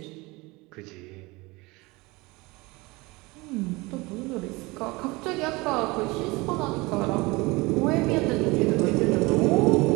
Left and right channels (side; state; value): left; quieter; 23.6 dB